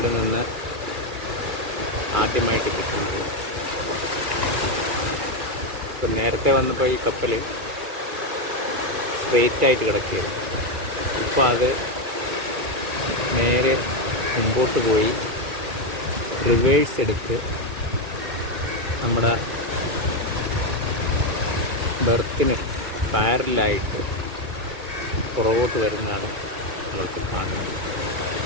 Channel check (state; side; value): late; left; 2.4 ms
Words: നിന്ന് ആദ്യമായിട്ട് കിട്ടുന്നത്. ഇപ്പം നേരത്തെ വന്നപ്പോൾ ഈ കപ്പൽ സ്ട്രെയിറ്റായിട്ട് കിടക്കുകയാണ്. ഇപ്പോൾ അത് നേരെ മുമ്പോട്ട് പോയി റിവേഴ്സ് എടുത്ത് നമ്മുടെ ബെർത്തിന് പാരലായിട്ട് പുറകോട്ട് വരുന്നതാണ് നമ്മൾക്ക് കാണുന്നത്.